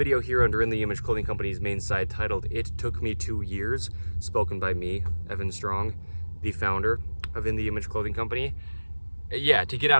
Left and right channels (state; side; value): inverted; both; correlation -1.00